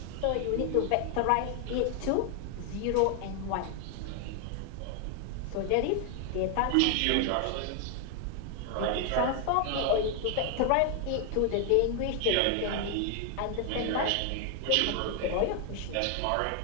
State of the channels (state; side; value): different; both; correlation 0.00